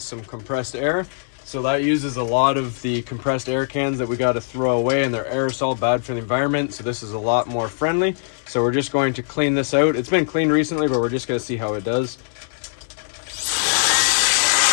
some compressed air. So that uses a lot of the compressed air cans that we got to throw away, and they're aerosol, bad for the environment. So this is a lot more friendly. So we're just going to clean this out. It's been cleaned recently, but we're just going to see how it does.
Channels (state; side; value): silent; right; digital silence